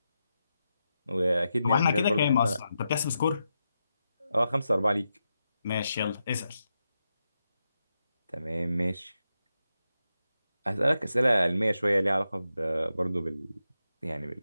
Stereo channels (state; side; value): inverted; both; correlation -0.87